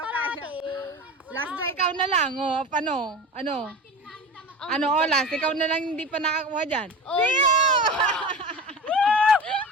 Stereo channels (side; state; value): both; normal; correlation 0.31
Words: kaya. Lasso, ikaw na lang. Oh, paano? Ano, olas? Ikaw na lang hindi pa nakakuha dyan. Oh, Theo!